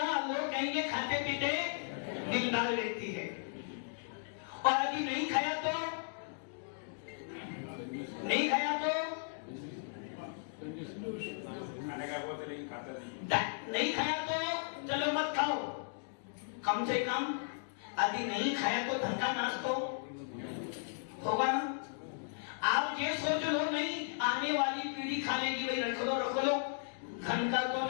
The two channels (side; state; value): right; silent; digital silence